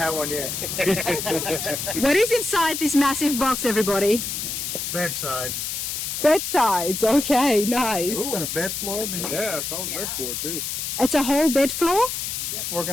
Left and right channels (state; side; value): noise; left; hiss, 4 dB below the sound